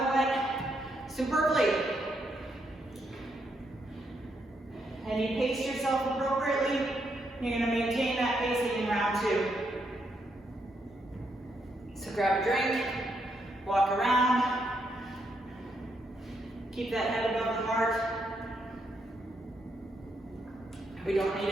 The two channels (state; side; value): normal; both; correlation 0.78